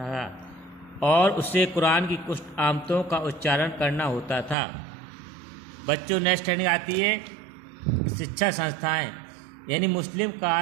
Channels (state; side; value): drops out; left; at 4.5 s